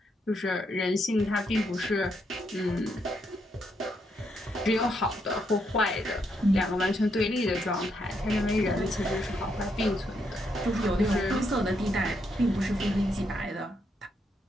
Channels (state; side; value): normal; both; correlation 0.77